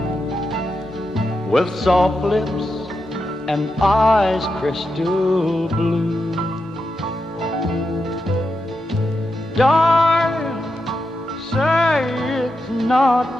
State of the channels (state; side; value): normal; both; correlation 0.87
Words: with soft lips and eyes crystal blue. Darling, say it's not